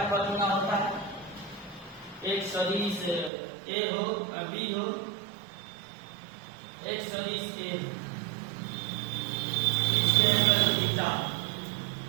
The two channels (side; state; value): left; drops out; at 3.3 s